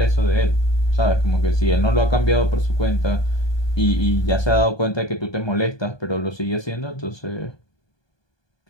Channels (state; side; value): late; right; 1.2 ms